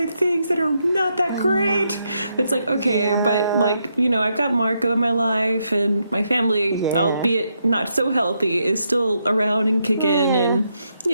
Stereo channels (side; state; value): both; inverted; correlation -0.80